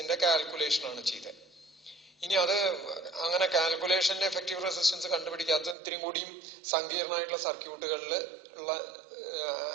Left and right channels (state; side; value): drops out; left; at 5.8 s